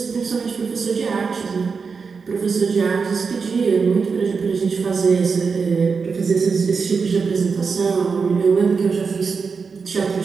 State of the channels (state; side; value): quieter; left; 5.2 dB